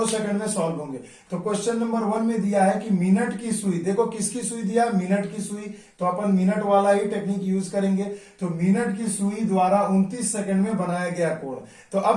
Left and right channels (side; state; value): both; identical; correlation 1.00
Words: सेकंड में सॉल्व होंगे। तो क्वेश्चन नंबर 1 में दिया है कि मिनट की सुई, देखो किसकी सुई दिया, मिनट की सुई, तो अपन मिनट वाला ही टेक्निक यूज करेंगे। तो मिनट की सुई द्वारा 29 सेकंड में बनाया गया कोण। तो